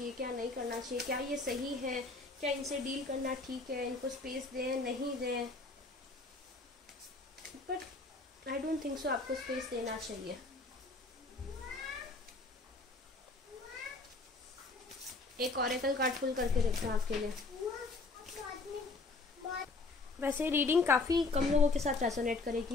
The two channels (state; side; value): quieter; right; 3.5 dB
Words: क्या नहीं करना चाहिए, क्या ये सही है, क्या इनसे डील करना ठीक है, इनको स्पेस दें नहीं दें। But I don't think so आपको स्पेस देना चाहिए। एक ऑरेकल कार्ड पुल करके रखा है आपके लिए। वैसे रीडिंग काफ़ी कम लोगों के साथ रेजोनेट